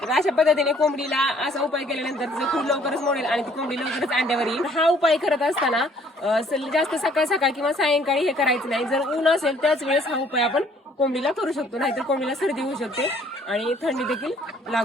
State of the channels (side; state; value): both; normal; correlation 0.60